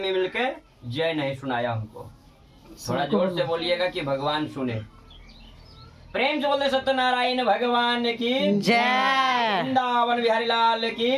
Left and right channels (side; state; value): both; identical; correlation 1.00